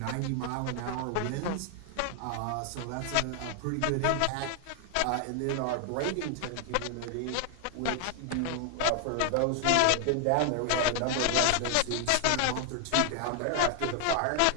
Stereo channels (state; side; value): different; both; correlation 0.00